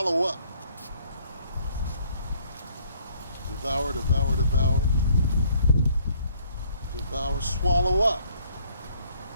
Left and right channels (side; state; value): both; inverted; correlation -0.63